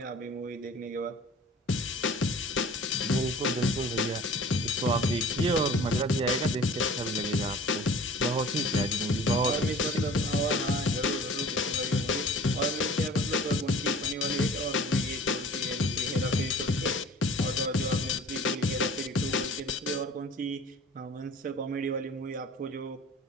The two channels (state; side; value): normal; both; correlation 0.45